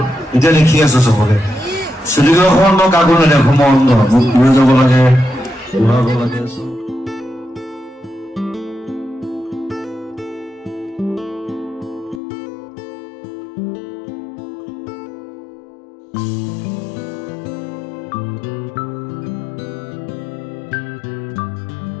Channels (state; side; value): drops out; right; at 12.2 s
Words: এতিয়া দেখি আছো চবকে শ্বুটিঙৰ সময়ত মই কাকো নেদেখো মই অন্ধ মোক লৈ যাব লাগে ঘূৰাব লাগে